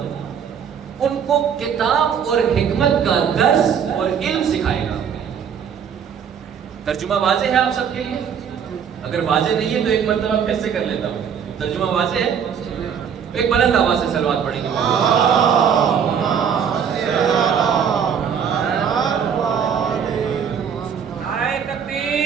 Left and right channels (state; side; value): quieter; left; 7.6 dB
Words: ان کو کتاب اور حکمت کا درس اور علم سکھائے گا۔ ترجمہ واضح ہے آپ سب کے لیے؟ اگر واضح نہیں ہے تو ایک مرتبہ پھر سے کر لیتا ہوں۔ ترجمہ واضح ہے؟ ایک بلند آواز سے صلوات پڑھیں گے۔ نعرہ